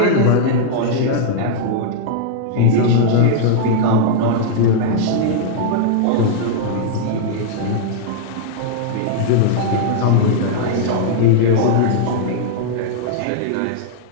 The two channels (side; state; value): both; different; correlation -0.01